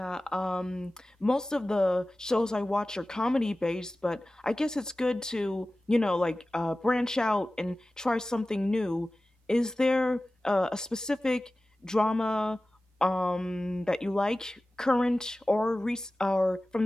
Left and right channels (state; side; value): normal; both; correlation 0.96